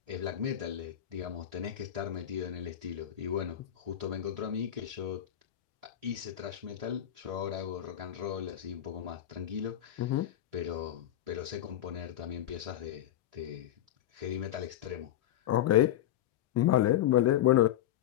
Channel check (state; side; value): quieter; right; 11.8 dB